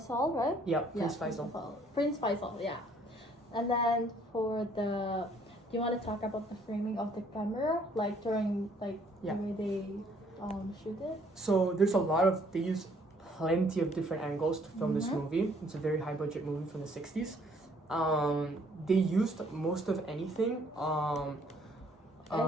right? Yeah, Prince Faisal. Prince Faisal, yeah. And then do you want to talk about the framing of the camera, like during the way they shoot it? So there's they use plenty of different angles to film this movie. It's a very high budget movie from the 60s. They used most of anything.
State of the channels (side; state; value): both; normal; correlation 0.62